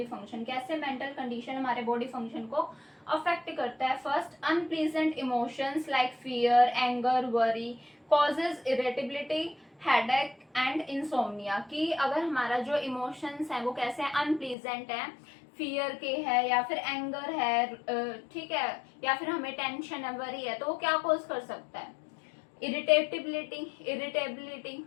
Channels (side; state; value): right; drops out; at 14.6 s